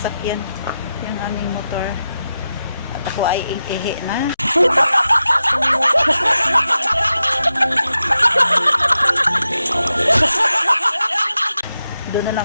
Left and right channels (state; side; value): inverted; both; correlation -0.90